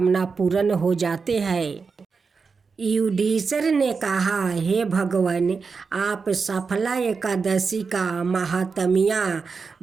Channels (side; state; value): left; quieter; 5.0 dB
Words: पूर्ण हो जाते हैं। युधिष्ठिर ने कहा, हे भगवान, आप सफला एकादशी का महात्म्य